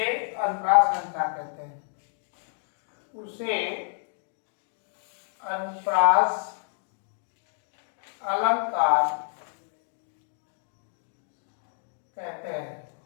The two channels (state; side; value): silent; right; digital silence